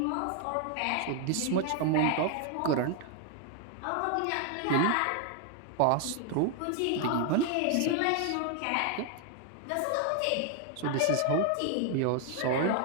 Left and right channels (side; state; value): both; different; correlation 0.00